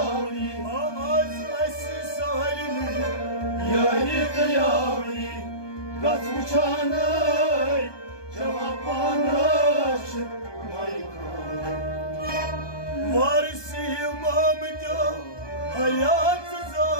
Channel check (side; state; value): right; late; 1.2 ms